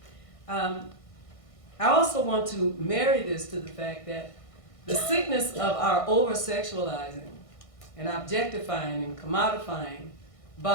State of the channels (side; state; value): right; late; 1.6 ms